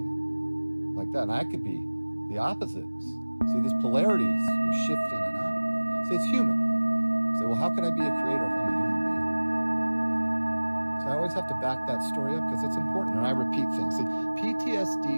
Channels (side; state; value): both; inverted; correlation -1.00